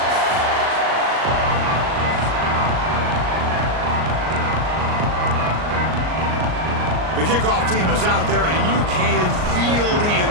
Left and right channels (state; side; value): late; left; 38 ms